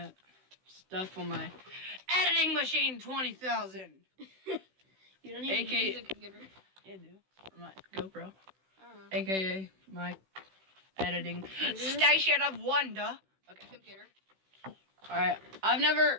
stuff on my editing machine 20,000. You don't even use a computer. Yeah, I do. For my GoPro. AKA my editing station of wonder. Okay. Computer. Alright. I've never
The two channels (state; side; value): late; left; 16 ms